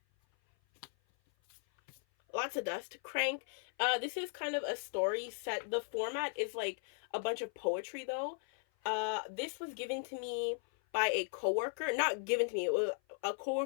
Lots of dust. Crank. This is kind of a story set. The format is like a bunch of poetry, though. This was given to me by a coworker. Not given to me. It was a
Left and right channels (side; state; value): right; silent; 53 dB below the other